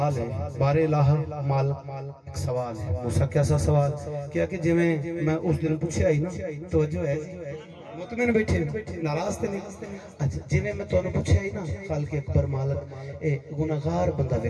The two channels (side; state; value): both; identical; correlation 1.00